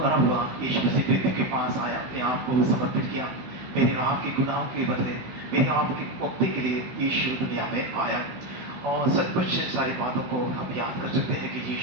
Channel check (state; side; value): late; left; 16 ms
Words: हुआ, यीशु मसीह मृत्यु के पास आया, अपने आप को समर्पित किया। मेरे और आपके गुनाहों के बदले, मेरे आपकी मुक्ति के लिए यीशु दुनिया में आया। और सचमुच सारी बातों को हम याद कर सकते हैं कि